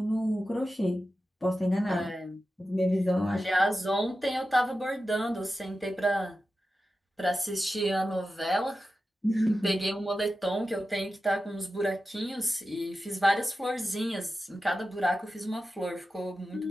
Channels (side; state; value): both; normal; correlation 0.92